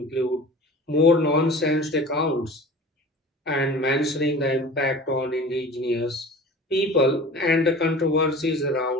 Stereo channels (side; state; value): both; normal; correlation 0.40